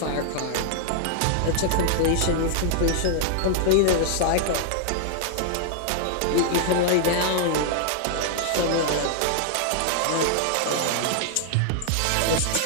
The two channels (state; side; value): different; both; correlation -0.01